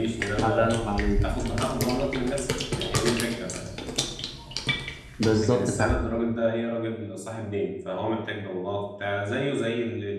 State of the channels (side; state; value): both; identical; correlation 1.00